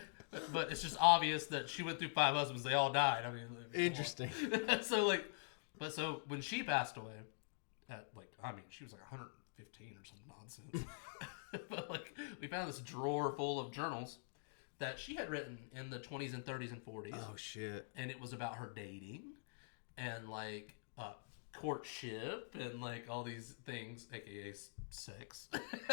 But it's just obvious that she went through 5 husbands. They all died. I mean, interesting. So when she passed away, she was like 115 or some nonsense. But like, we found this drawer full of journals that she had written in the 20s and 30s and 40s. Oh shit! And it was about her dating, and like courtship, and like all these things, aka sex.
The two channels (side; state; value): right; silent; digital silence